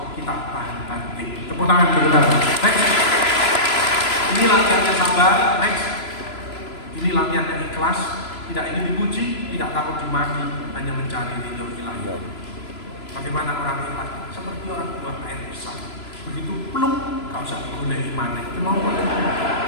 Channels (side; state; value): right; late; 3.0 ms